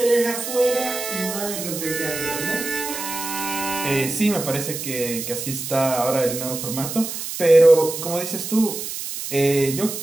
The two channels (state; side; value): noise; right; hiss, 6 dB below the sound